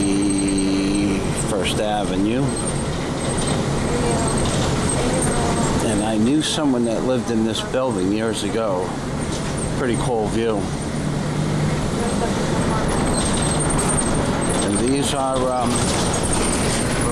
First Avenue. And I knew someone that lived in this building years ago. Pretty cool view. And these are,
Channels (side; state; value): both; identical; correlation 1.00